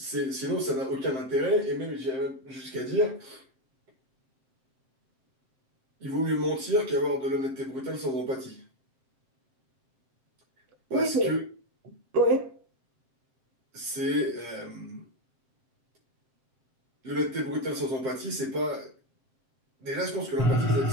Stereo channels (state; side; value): late; left; 7.6 ms